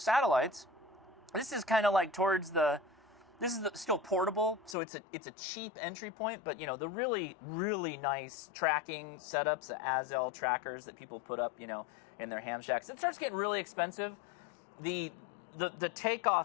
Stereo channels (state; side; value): drops out; right; at 4.8 s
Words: This is kind of like towards the. This is still portable, so it's a cheap entry point. But the really nice tracking setups, the Azel trackers that people put up, in their ham shacks. It starts getting really expensive. The